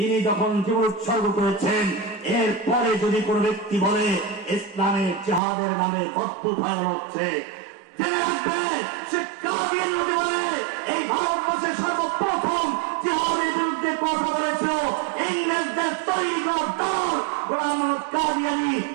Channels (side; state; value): left; drops out; at 5.4 s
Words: যখন জীবন উৎসর্গ করেছেন, এরপরে যদি কোন ব্যক্তি বলে ইসলামের জিহাদের নামে অদ্ভুত হয়ে হচ্ছে, জেনে রাখবে সে কাদিয়ান লোকে বলে এই ভারতবর্ষের সর্বপ্রথম জিহাদের বিরুদ্ধে কথা বলেছিল ইংরেজদের তৈরি করা দল গোলাম মোহাম্মদ কাদিয়ানি।